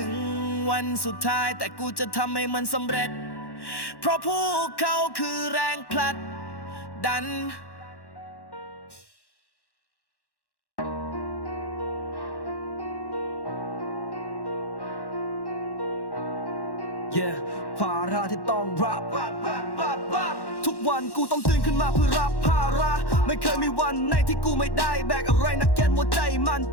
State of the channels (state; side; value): late; right; 1.1 ms